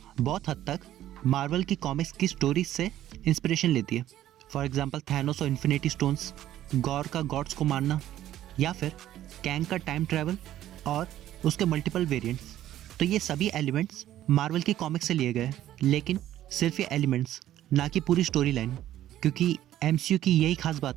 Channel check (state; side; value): quieter; left; 12.8 dB